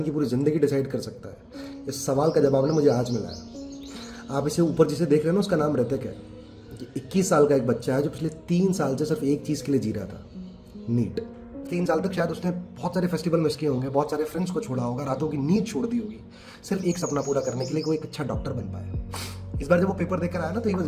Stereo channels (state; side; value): identical; both; correlation 1.00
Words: की पूरी ज़िंदगी डिसाइड कर सकता है। इस सवाल का जवाब ना मुझे आज मिला है। आप इसे ऊपर जिसे देख रहे हैं ना, उसका नाम ऋतिक है। ये 21 साल का एक बच्चा है जो पिछले 3 साल से सिर्फ एक चीज़ के लिए जी रहा था, नीट। 3 साल तक शायद उसने बहुत सारे फेस्टिवल मिस किए होंगे, बहुत सारे फ्रेंड्स को छोड़ा होगा, रातों की नींद छोड़ दी होगी, सिर्फ एक सपना पूरा करने के लिए कि वो एक अच्छा डॉक्टर बन पाए। इस बार जब वो पेपर देकर आया ना, तो he